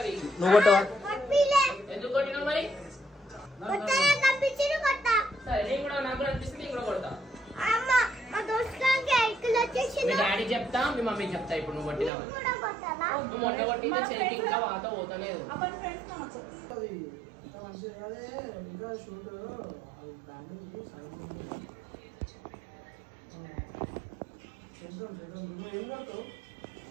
నువ్వు కొట్టవా ఎందుకు కొట్టినావు మరి సరే నేను కూడా నాకు కూడా అనిపిస్తుంది నేను కూడా కొడతా మీ డాడీ చెప్తా మీ మమ్మీ చెప్తా ఇప్పుడు నువ్వు కొట్టినా నువ్వు మొట్ట కొట్టింది చెయ్యి ఇంకా వాత పోతలేదు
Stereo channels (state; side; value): drops out; left; at 12.1 s